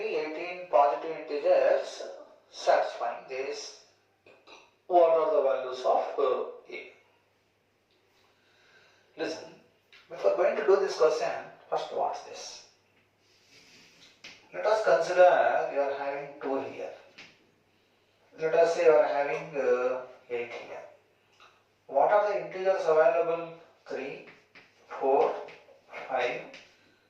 18 positive integers satisfying this. What are the values of a? Listen, before going to do this question, first watch this. Let us consider you are having 2 here. Let us say you are having 8 here. What are the integers available? 3, 4, 5,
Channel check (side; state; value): both; identical; correlation 1.00